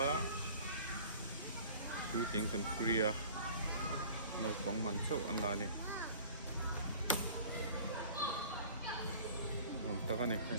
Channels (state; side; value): inverted; both; correlation -0.44